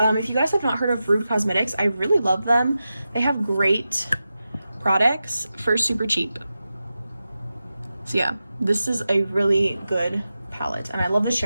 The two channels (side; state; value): both; inverted; correlation -0.92